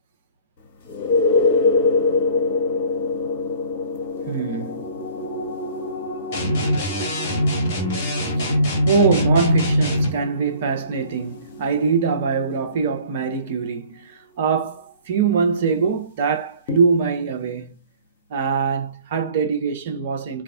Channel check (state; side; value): inverted; both; correlation -0.52